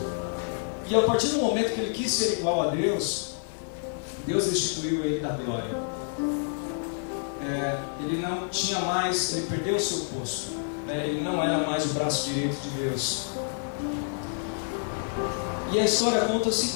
E a partir do momento que ele quis ser igual a Deus, Deus destituiu ele da glória. Ele não tinha mais, ele perdeu o seu posto, né? Ele não era mais o braço direito de Deus. E a história conta o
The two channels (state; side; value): silent; right; digital silence